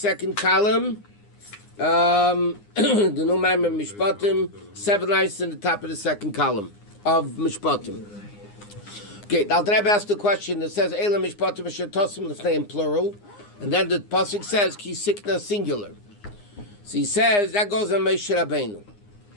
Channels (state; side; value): late; right; 9.7 ms